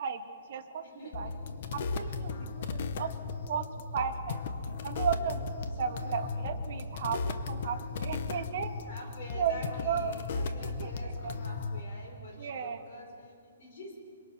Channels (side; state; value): both; inverted; correlation -0.56